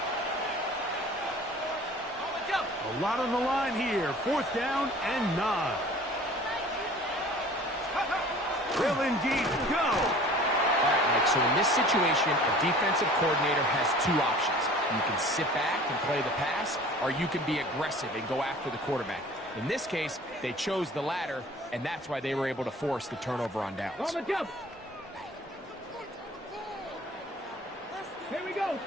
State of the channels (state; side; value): normal; both; correlation 0.46